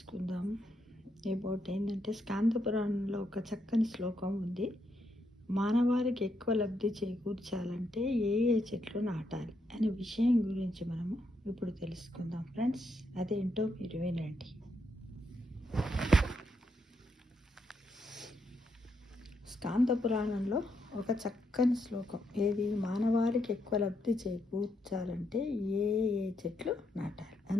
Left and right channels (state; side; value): normal; both; correlation 0.79